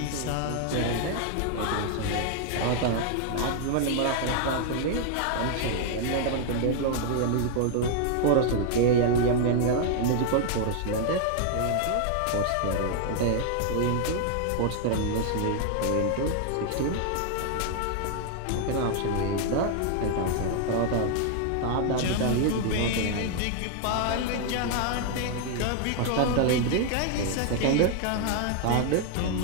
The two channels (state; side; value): different; both; correlation 0.00